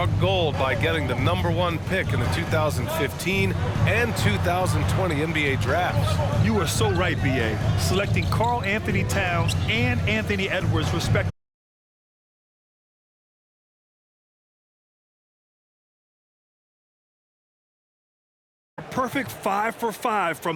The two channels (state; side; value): identical; both; correlation 1.00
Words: gold by getting the #1 pick in the 2015 and 2020 NBA drafts. You are so right, B.A. Selecting Karl Anthony Towns and Anthony Edwards, respectively. Perfect 5 for 5